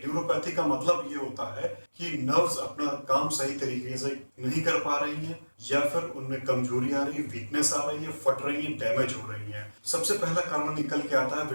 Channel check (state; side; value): inverted; both; correlation -1.00